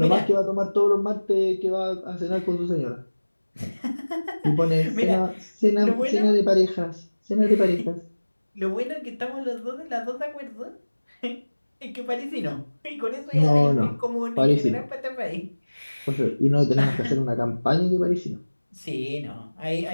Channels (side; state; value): both; inverted; correlation -1.00